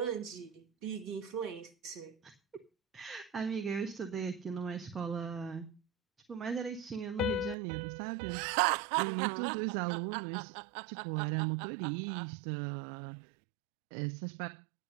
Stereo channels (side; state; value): left; drops out; at 7.6 s